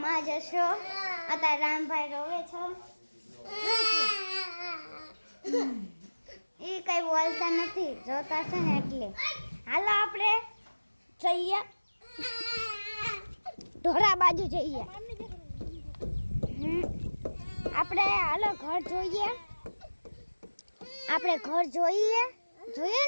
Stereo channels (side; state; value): both; inverted; correlation -1.00